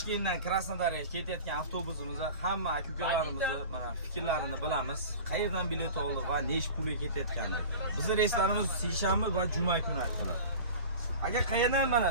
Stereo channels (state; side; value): inverted; both; correlation -0.36